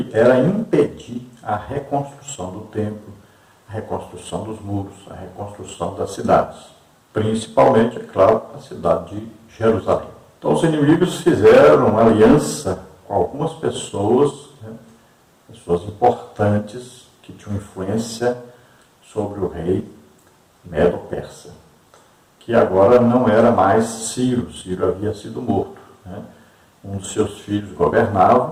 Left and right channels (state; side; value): identical; both; correlation 1.00